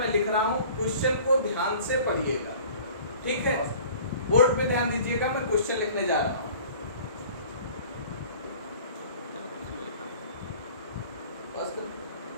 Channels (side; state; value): both; inverted; correlation -0.47